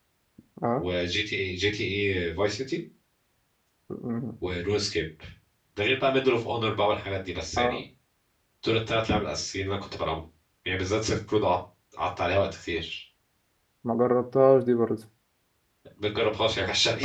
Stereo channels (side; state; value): both; identical; correlation 1.00